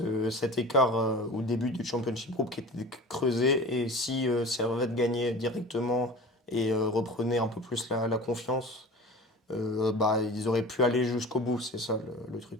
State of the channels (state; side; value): normal; both; correlation 0.37